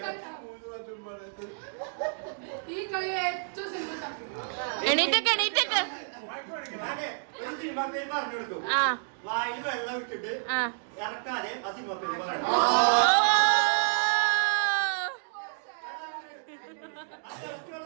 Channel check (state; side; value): silent; left; digital silence